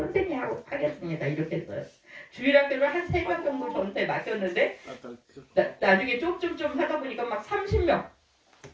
하겠습니다 이렇게 했어요. 주일학교를 한 3명 정도 저한테 맡겼는데 나중에 좀 하다 보니까 막 30명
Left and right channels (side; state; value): both; identical; correlation 1.00